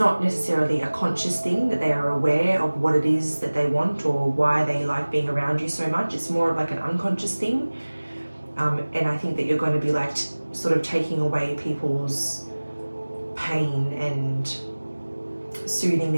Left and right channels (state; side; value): inverted; both; correlation -1.00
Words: necessarily a conscious thing that they are aware of what it is that they want or why they like being around you so much. It's more of like an unconscious thing. And I think that you're going to be like sort of taking away people's pain and soothing